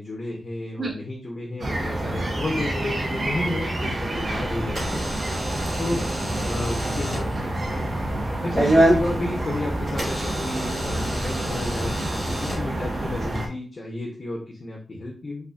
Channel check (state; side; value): normal; both; correlation 0.91